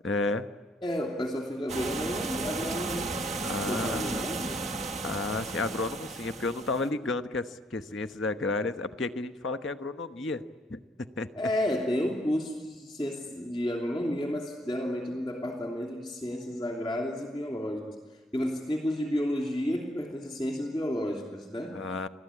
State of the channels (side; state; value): both; normal; correlation 0.68